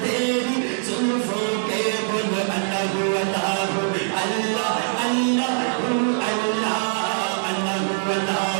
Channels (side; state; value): left; silent; digital silence